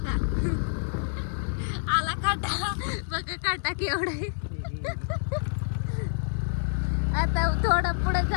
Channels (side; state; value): right; silent; 60 dB below the other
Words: आता केवढं आता थोडं पुढे